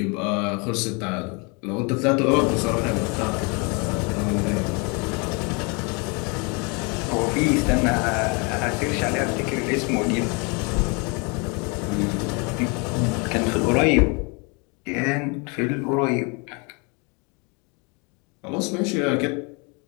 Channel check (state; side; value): quieter; right; 31.6 dB